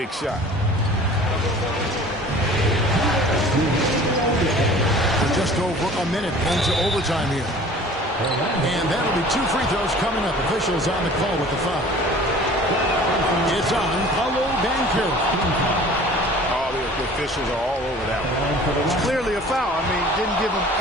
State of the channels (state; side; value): normal; both; correlation 0.46